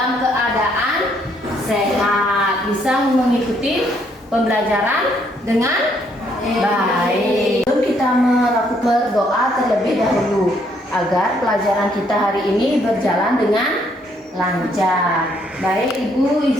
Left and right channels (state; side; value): normal; both; correlation 0.70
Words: keadaan sehat, bisa mengikuti pembelajaran dengan baik. Sebelum kita melakukan berdoa terlebih dahulu agar pelajaran kita hari ini berjalan dengan lancar. Baik, Ibu